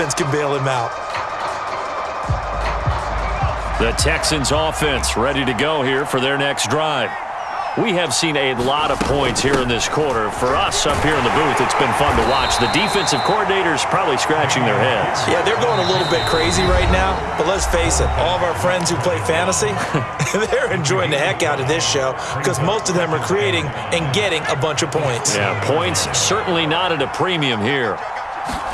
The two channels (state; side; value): identical; both; correlation 1.00